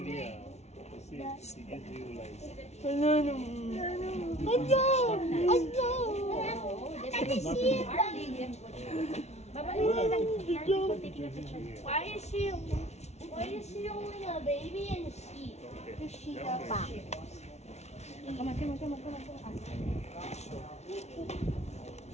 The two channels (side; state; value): right; late; 0.32 ms